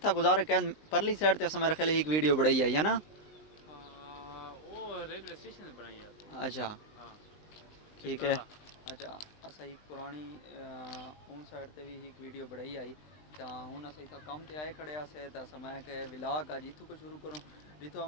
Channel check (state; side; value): late; right; 19 ms